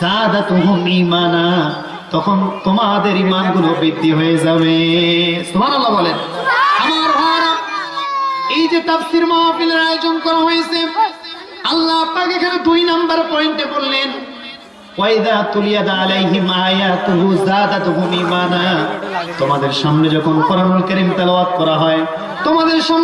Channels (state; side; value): identical; both; correlation 1.00